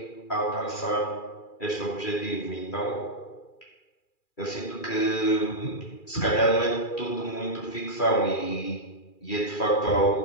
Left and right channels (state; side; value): late; right; 2.4 ms